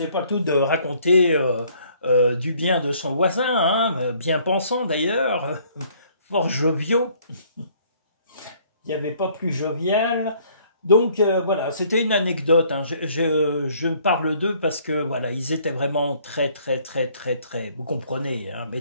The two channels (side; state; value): both; inverted; correlation -0.61